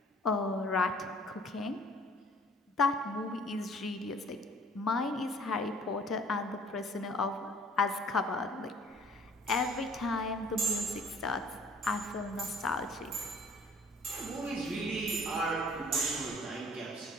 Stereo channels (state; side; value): normal; both; correlation 0.53